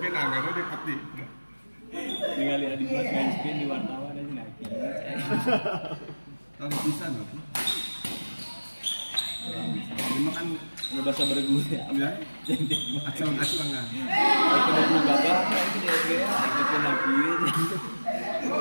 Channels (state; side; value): inverted; both; correlation -1.00